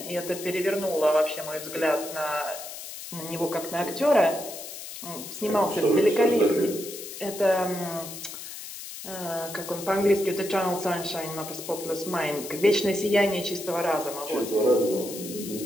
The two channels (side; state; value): left; noise; hiss, 11 dB below the sound